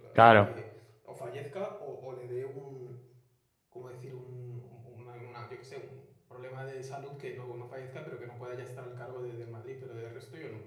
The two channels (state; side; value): identical; both; correlation 1.00